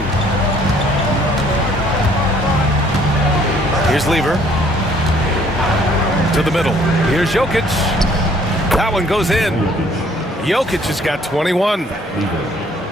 Here's Lever. To the middle. Here's Jokic. That one goes in. Jokic has got 21.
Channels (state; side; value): normal; both; correlation 0.61